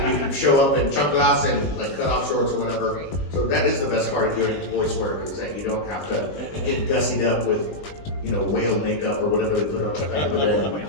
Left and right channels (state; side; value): late; right; 20 ms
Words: can show up in chanclas and cut off shorts or whatever. So that is the best part of doing voice work is that you don't have to get gussied up with, whale makeup or whatever they put on back in the day.